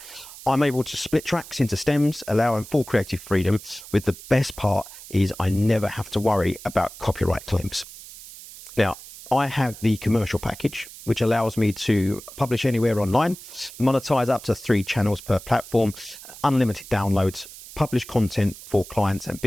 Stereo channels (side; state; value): right; noise; hiss, 16 dB below the sound